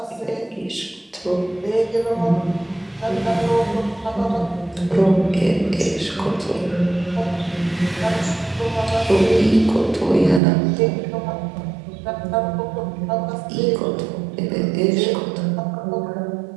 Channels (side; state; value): left; drops out; at 10.4 s